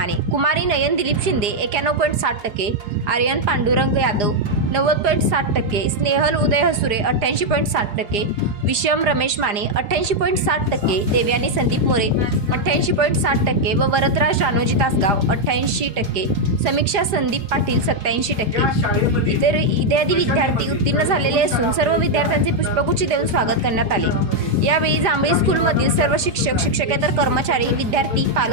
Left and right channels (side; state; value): left; late; 4.9 ms